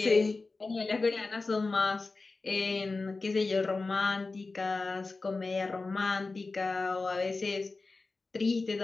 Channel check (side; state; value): right; quieter; 3.7 dB